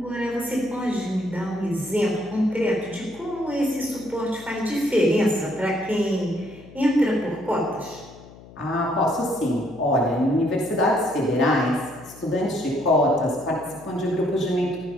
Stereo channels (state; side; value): noise; left; hum, 20 dB below the sound